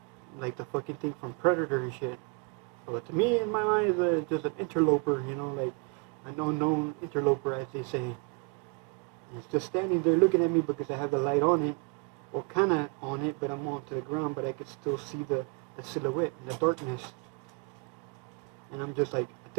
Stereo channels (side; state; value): left; quieter; 31.9 dB